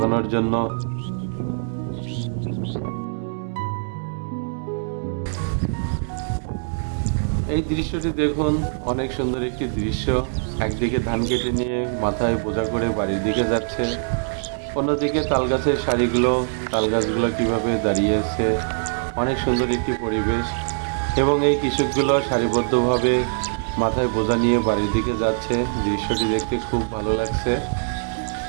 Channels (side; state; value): left; silent; digital silence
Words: জন্য। এই দৃশ্যটি দেখুন, অনেক সুন্দর একটি দৃশ্য। একদিকে ধান কেটে নিয়ে মাথায় বোঝা করে বাড়ির দিকে যাচ্ছে, অন্যদিকে তাল গাছের সারিগুলো, তাল গাছগুলো কীভাবে দাঁড়িয়ে আছে, অনেক সুন্দর একটি পরিবেশ। এবং এই কৃষকগুলো সারিবদ্ধভাবে মাথায় বোঝা নিয়ে বাড়ির দিকে যাচ্ছে, দৃশ্যটি দেখতে খুব ভালো লাগছে।